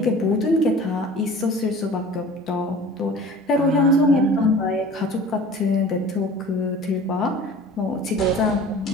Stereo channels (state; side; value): normal; both; correlation 0.43